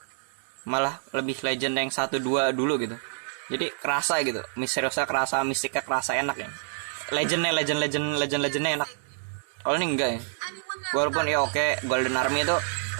Malah lebih legend yang 1-2 dulu gitu. Jadi kerasa gitu, misteriusnya kerasa, mistiknya kerasa, enak ya. Legendnya enak. Kalau ini enggak ya. Walaupun ya oke, Golden Army itu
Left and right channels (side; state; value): left; silent; digital silence